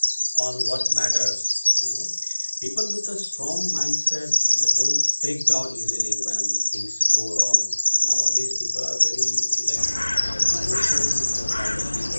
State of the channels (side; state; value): both; inverted; correlation -1.00